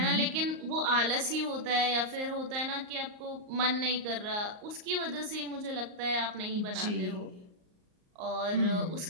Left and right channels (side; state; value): left; late; 38 ms